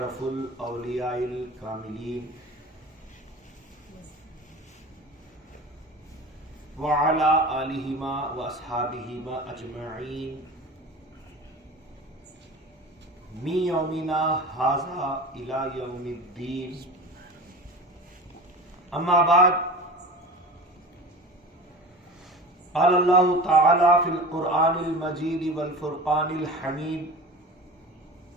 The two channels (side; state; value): both; normal; correlation 0.35